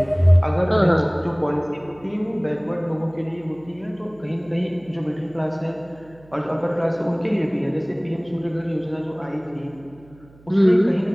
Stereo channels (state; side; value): noise; right; hum, 25 dB below the sound